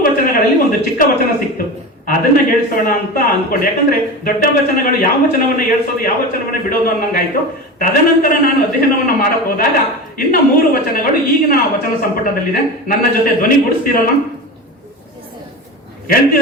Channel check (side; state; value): both; normal; correlation 0.27